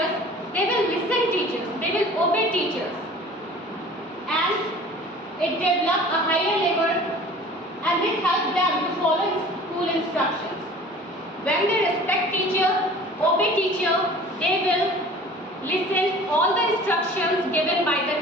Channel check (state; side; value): normal; both; correlation 0.45